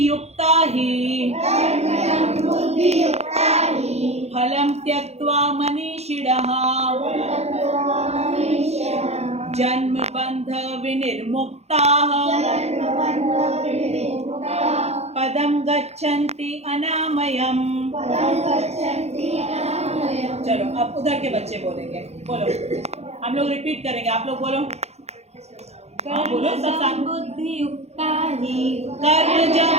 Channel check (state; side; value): late; left; 0.31 ms